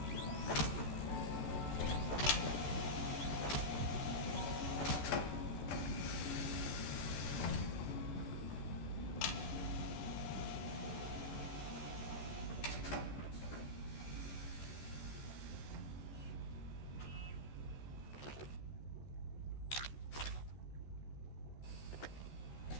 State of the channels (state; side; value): late; right; 14 ms